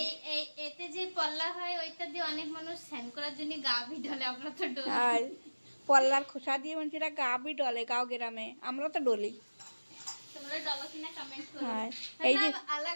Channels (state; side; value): inverted; both; correlation -1.00